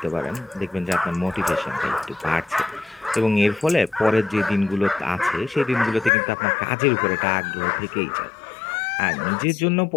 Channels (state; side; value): drops out; right; at 6.1 s